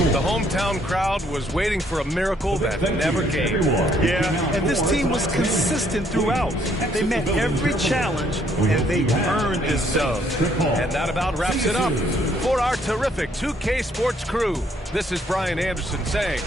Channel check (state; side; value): normal; both; correlation 0.67